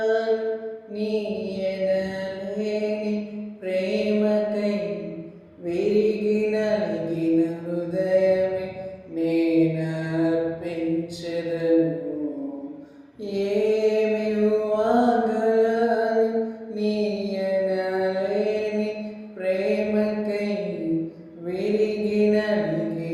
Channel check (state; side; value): identical; both; correlation 1.00